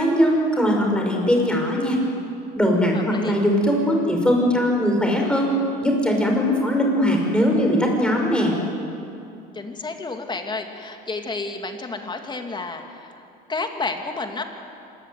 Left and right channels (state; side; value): normal; both; correlation 0.57